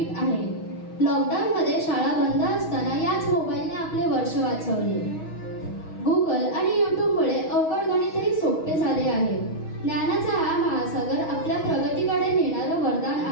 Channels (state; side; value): late; right; 6.3 ms